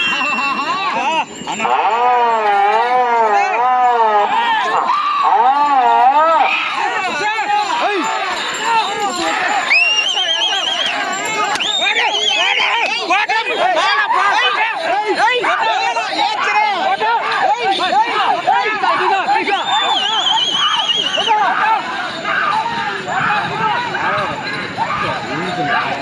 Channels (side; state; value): both; identical; correlation 1.00